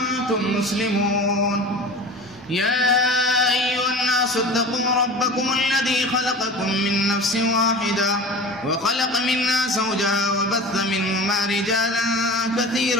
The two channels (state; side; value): normal; both; correlation 0.36